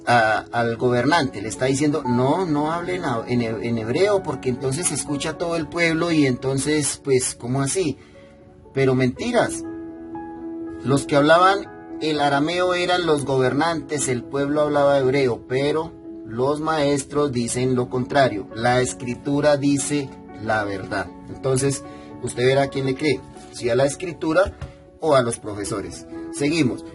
al gobernante? Le está diciendo: no hablen en hebreo, porque entonces se escucha todo el pueblo y entonces, pues, ¿cómo así? Pero mentiras. Los que hablaban el arameo eran los gobernantes, el pueblo hablaba hebreo, pero los maestros dicen lo contrario. La escritura dice la verdad. Entonces, usted verá a quién le cree, si a la escritura o a los profesores. Seguimos.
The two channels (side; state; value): both; identical; correlation 1.00